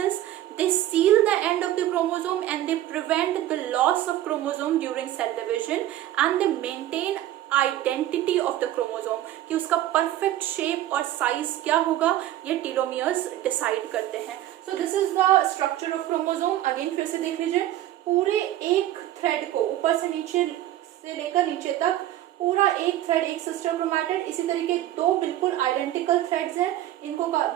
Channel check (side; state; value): left; quieter; 13.5 dB